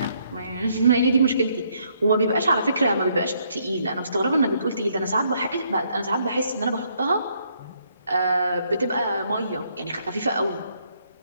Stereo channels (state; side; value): inverted; both; correlation -0.71